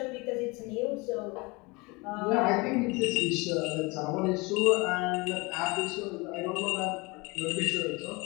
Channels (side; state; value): right; quieter; 25.9 dB